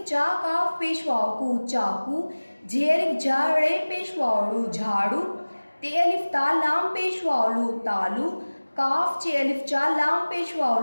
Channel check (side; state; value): both; inverted; correlation -1.00